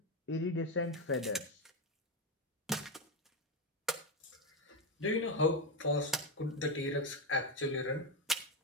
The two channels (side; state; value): both; normal; correlation 0.11